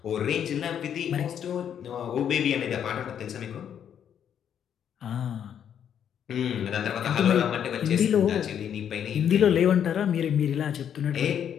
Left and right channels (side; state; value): right; quieter; 8.9 dB